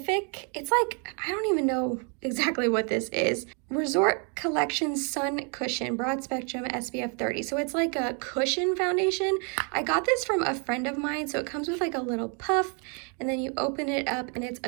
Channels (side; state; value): left; quieter; 37.8 dB